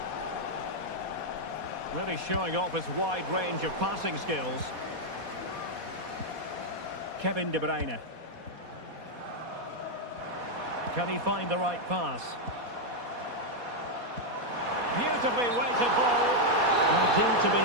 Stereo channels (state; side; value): late; left; 4.2 ms